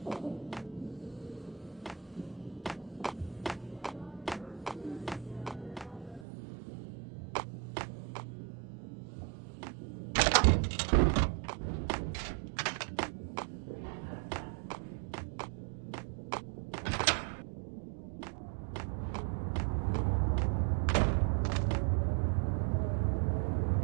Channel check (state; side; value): drops out; left; at 6.2 s